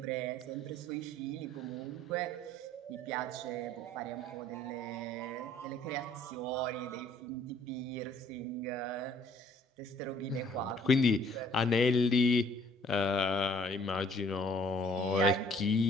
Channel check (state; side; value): normal; both; correlation 0.58